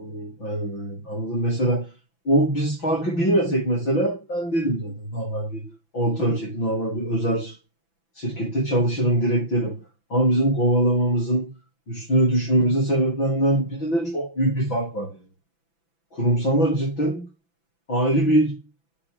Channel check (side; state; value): right; late; 6.0 ms